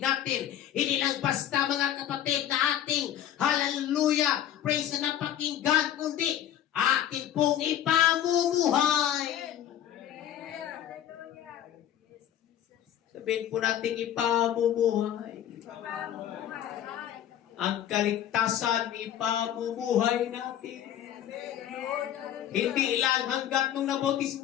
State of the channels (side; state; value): right; quieter; 10.9 dB